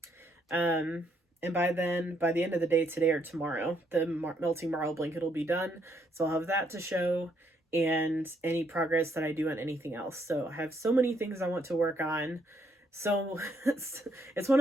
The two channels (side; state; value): both; normal; correlation 0.73